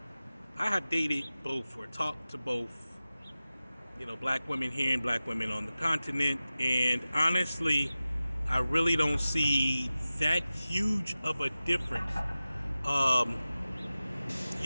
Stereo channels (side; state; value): both; inverted; correlation -0.95